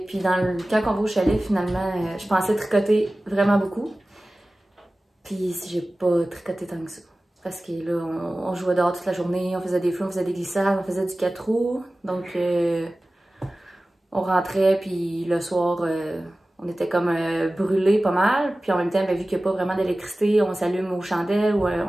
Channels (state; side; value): normal; both; correlation 0.97